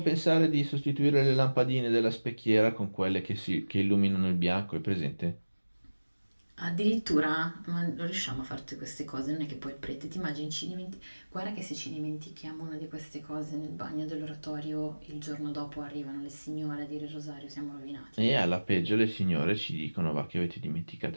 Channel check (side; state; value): both; inverted; correlation -1.00